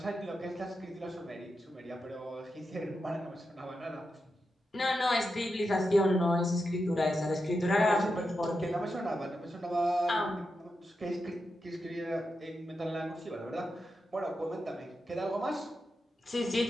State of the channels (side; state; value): both; normal; correlation 0.88